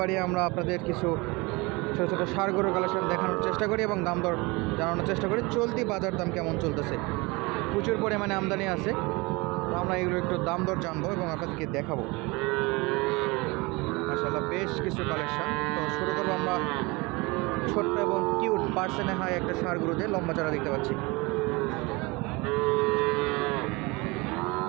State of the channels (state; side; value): quieter; left; 25.1 dB